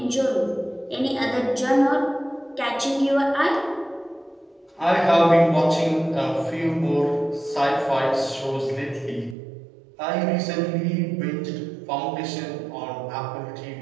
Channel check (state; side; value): drops out; left; at 9.3 s